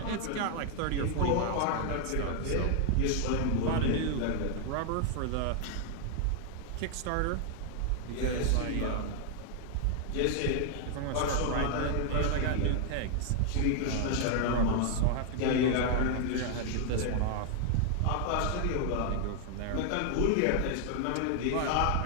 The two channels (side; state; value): both; different; correlation 0.00